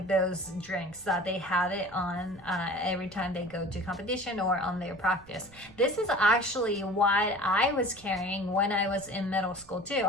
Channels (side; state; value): right; noise; rumble, 24 dB below the sound